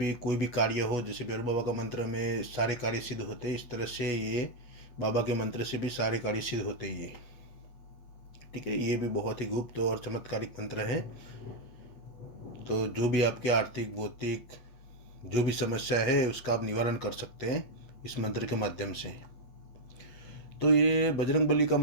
कोई भी कार्य हो, जैसे भैरू बाबा का मंत्र में सारे कार्य सिद्ध होते हैं, इस तरह से ये बाबा के मंत्र से भी सारे कार्य सिद्ध होते हैं ये। ठीक है, ये भी बहुत ही गुप्त और चमत्कारिक मंत्र है। तो जो भी आपके आर्थिक भौतिक जो भी समस्या है उसका आप निवारण कर सकते हैं इस मंत्र के माध्यम से। तो ये बजरंगबली का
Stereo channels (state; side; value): late; right; 8.2 ms